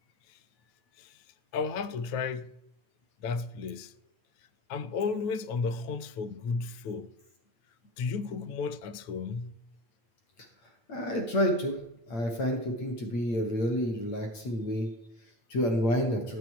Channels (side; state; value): right; late; 8.7 ms